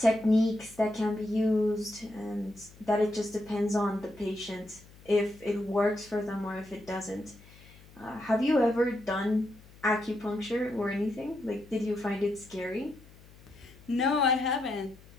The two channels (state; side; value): noise; left; hum, 23 dB below the sound